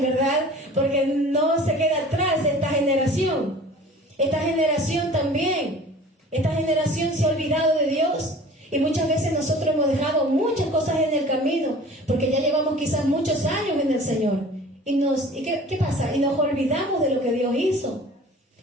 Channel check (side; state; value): both; normal; correlation 0.44